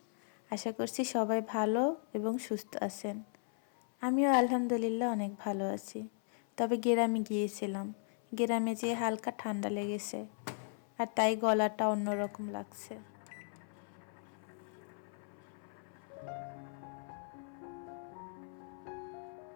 আশা করছি সবাই ভালো এবং সুস্থ আছেন। আমিও আলহামদুলিল্লাহ অনেক ভালো আছি। তবে গ্রামে গিয়েছিলাম, গ্রামে যেয়ে হালকা ঠান্ডা লেগেছে আর তাই গলাটা অন্যরকম লাগছে।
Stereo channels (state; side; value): silent; right; 53 dB below the other